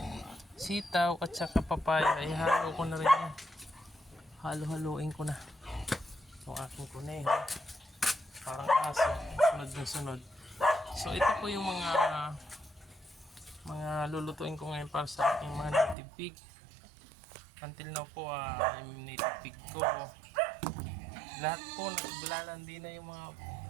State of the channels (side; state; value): left; drops out; at 16.0 s